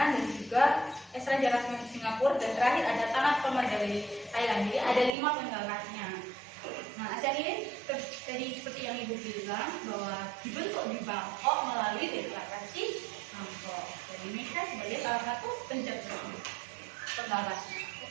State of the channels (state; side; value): drops out; left; at 5.1 s